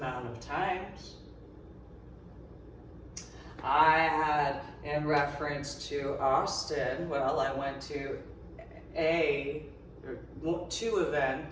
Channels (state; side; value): identical; both; correlation 1.00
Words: of times. I had, in reference to Austin, well, I went to 2